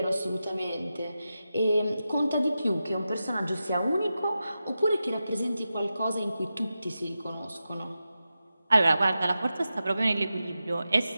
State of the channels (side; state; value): both; inverted; correlation -0.91